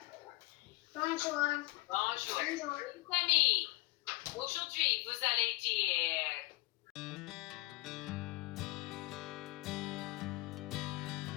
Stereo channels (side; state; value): right; quieter; 20.3 dB